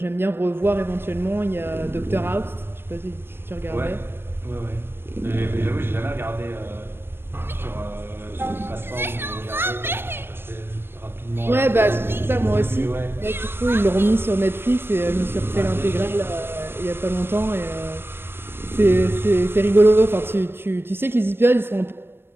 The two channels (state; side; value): late; left; 0.11 ms